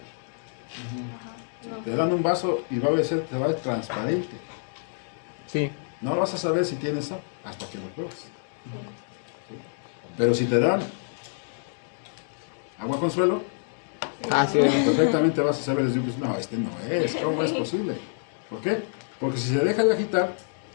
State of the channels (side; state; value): right; silent; digital silence